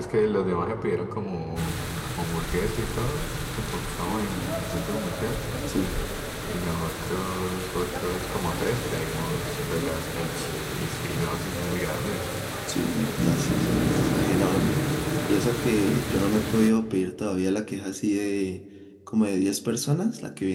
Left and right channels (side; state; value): both; identical; correlation 1.00